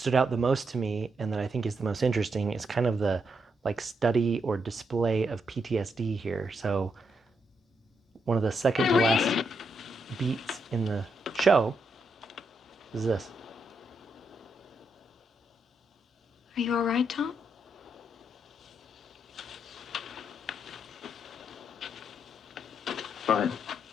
out the most to me and that I think is the most interesting is kind of the like study or display of PTSD here. So one of the second to last beats in the show is this. Are you all right, Tom? Fine.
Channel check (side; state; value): both; normal; correlation 0.80